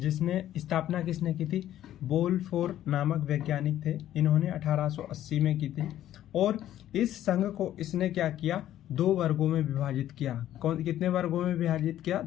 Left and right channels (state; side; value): quieter; right; 12.3 dB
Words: स्थापना किसने की थी? बोलफोर नामक वैज्ञानिक थे। इन्होंने 1880 में की थी और इस संघ को इसने क्या किया? 2 वर्गों में विभाजित किया। कितने वर्गों में विभाजित किया?